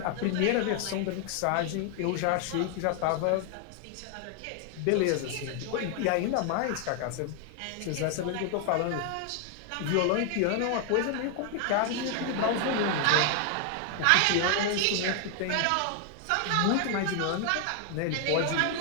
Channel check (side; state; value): both; different; correlation 0.00